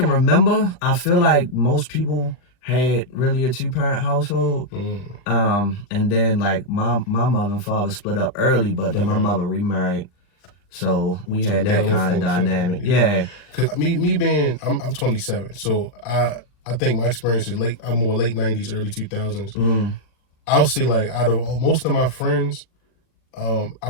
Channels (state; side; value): late; right; 40 ms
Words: remember, I feel like most people had really a 2-parent household. And then like my mother and father split up early, but then my mother remarried. So we had that kind of dynamic. Yeah. Cause me being, I'm 27. So I think my experience is I'm more late 90s, early 2000s. I'll say like out of most of my friends, I